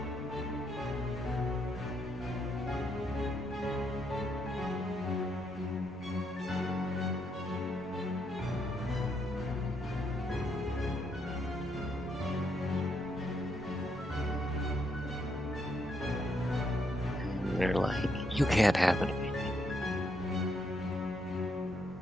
And they're like, you can't have it.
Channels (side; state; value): both; normal; correlation 0.76